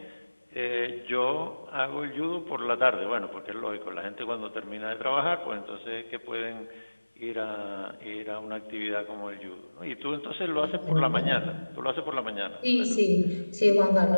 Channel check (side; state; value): both; inverted; correlation -1.00